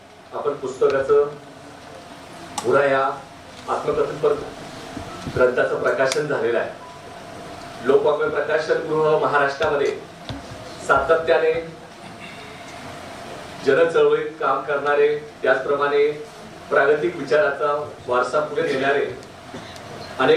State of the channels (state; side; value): identical; both; correlation 1.00